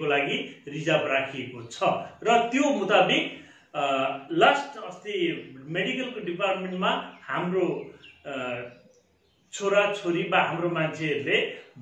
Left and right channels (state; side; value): identical; both; correlation 1.00